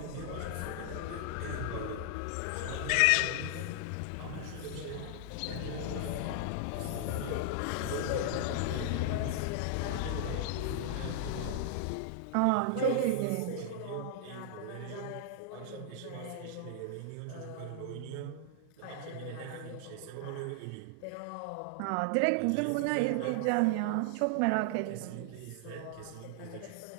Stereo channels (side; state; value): both; different; correlation 0.00